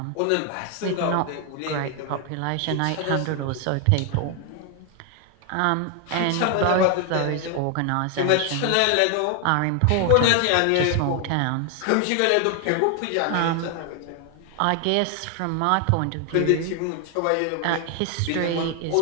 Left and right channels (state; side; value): different; both; correlation 0.00